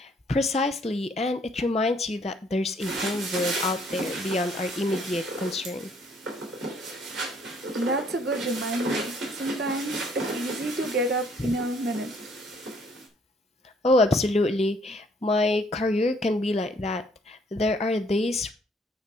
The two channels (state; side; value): normal; both; correlation 0.63